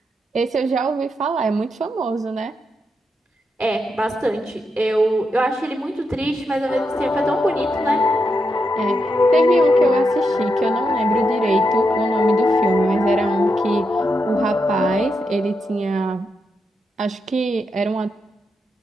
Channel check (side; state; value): both; normal; correlation 0.84